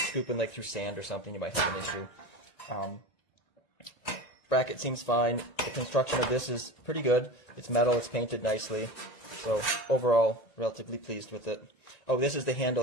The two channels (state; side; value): late; right; 1.8 ms